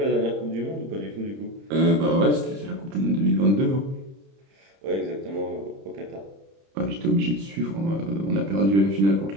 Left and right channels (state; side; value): late; left; 30 ms